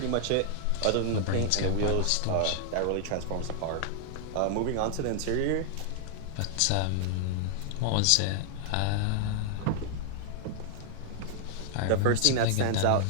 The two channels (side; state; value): both; different; correlation 0.00